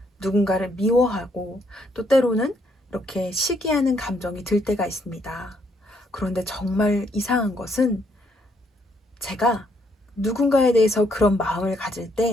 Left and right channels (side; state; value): both; normal; correlation 0.71